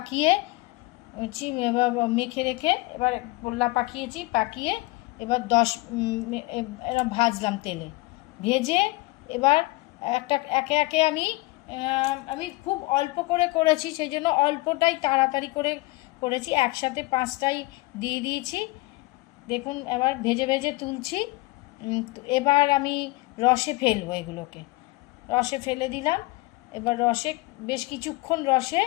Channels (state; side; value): quieter; right; 22.3 dB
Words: এবার মেখে রেখে এবার গোল্লা পাকিয়ে এবার এবার ভাজলাম তেলে, ভেজে এবার একে একে আমি খুব অল্প করে করেছি, সেই জন্য অল্পটাই তাড়াতাড়ি করে করেছি, একসাথে 5টাই দিয়ে দিয়েছি। দেখুন এবার ভেজে ভেজে তুলছি। এবার আমি রসে ফেলবো, এগুলোকে রসে ফেলে দিলাম। এবার রসে বেশ কিছুক্ষণ রসে